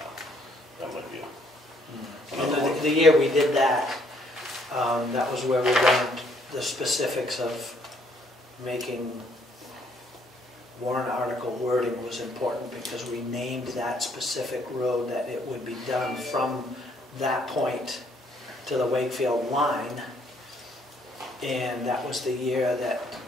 That might be And the year we did that, that was where we learned the specifics of making warrant article wording was important, because we named that specific road that it would be done from that point to the Wakefield line. And that was the year that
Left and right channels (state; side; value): normal; both; correlation 0.67